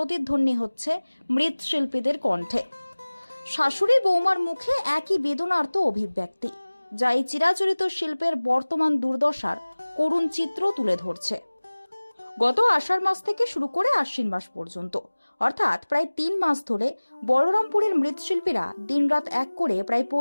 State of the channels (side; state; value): both; inverted; correlation -1.00